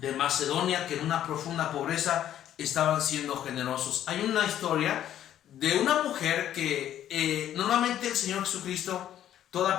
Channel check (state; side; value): quieter; right; 11.2 dB